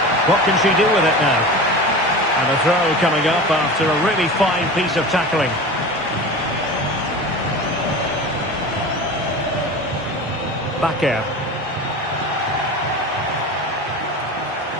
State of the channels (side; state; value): both; normal; correlation 0.32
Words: What can she do with it now? And a throw coming up after a really fine piece of tackling. Bakker.